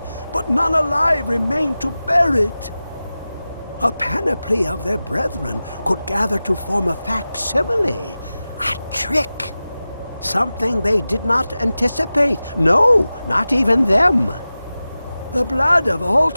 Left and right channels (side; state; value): both; inverted; correlation -0.95